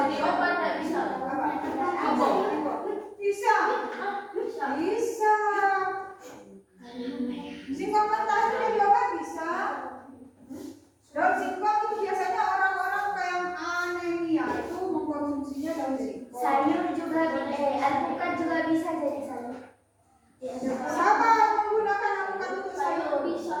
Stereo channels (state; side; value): identical; both; correlation 1.00